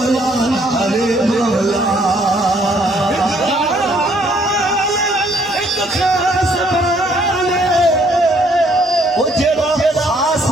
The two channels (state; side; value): normal; both; correlation 0.65